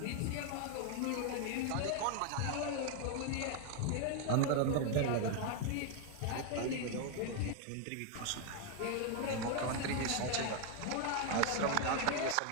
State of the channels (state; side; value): different; both; correlation 0.01